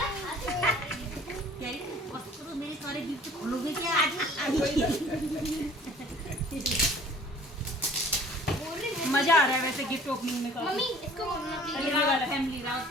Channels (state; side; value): normal; both; correlation 0.50